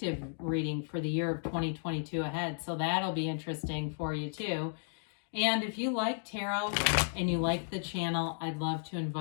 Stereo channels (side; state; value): right; silent; digital silence